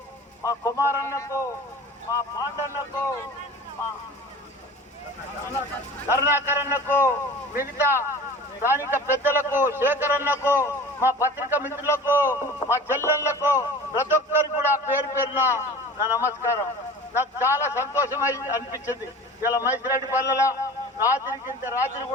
మా కుమారన్నకు, మా పాండన్నకు, మా కరుణాకరన్నకు, మిగతా స్థానిక పెద్దలకు, శేఖరన్నకు, మా పత్రిక మిత్రులకు, మా చెల్లెళ్లకు, ప్రతి ఒక్కరికి కూడా పేరు పేరున నా నమస్కారం. నాకు చాలా సంతోషమై అనిపించింది. ఇలా మైసిరెడ్డిపల్లెల రాత్రి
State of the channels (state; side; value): normal; both; correlation 0.39